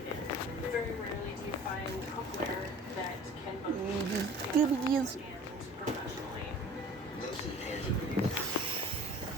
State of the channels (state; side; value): normal; both; correlation 0.45